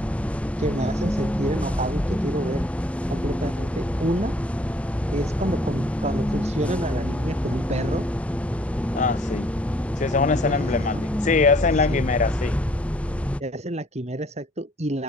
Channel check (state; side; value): normal; both; correlation 0.60